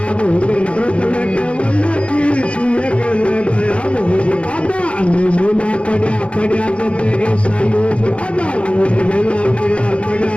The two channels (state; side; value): late; right; 0.061 ms